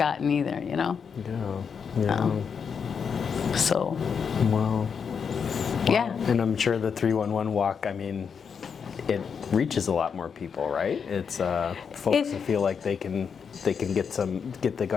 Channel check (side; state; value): right; quieter; 6.5 dB